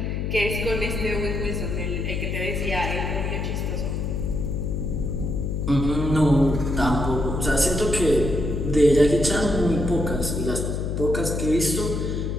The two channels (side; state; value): left; noise; hum, 2 dB below the sound